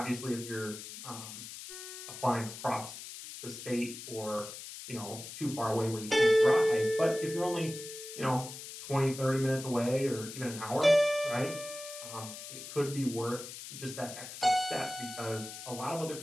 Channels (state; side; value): noise; left; hiss, 11 dB below the sound